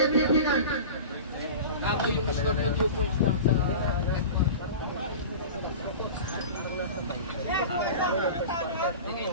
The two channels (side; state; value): both; inverted; correlation -0.33